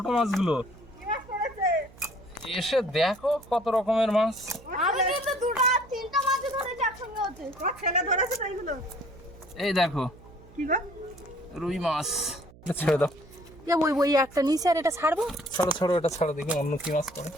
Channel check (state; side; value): noise; right; hum, 22 dB below the sound